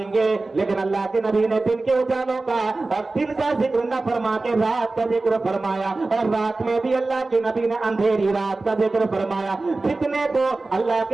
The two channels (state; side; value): quieter; left; 3.4 dB